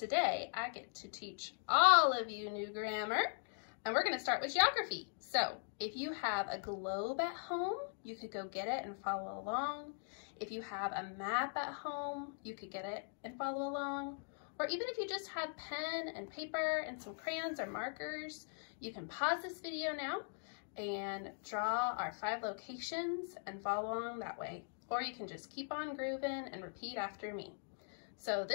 I get to teach all of you new grammar, and we're going to start with geography. So if you have a globe at home, you could go get it and follow along. If you have a map at home, you could get it and follow along. Or even if you just have pen and paper and some crayons or markers, you can pause this video now and draw our 5 locations and follow along that way. Or you can just keep on grooving and repeat after me. So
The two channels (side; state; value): right; silent; digital silence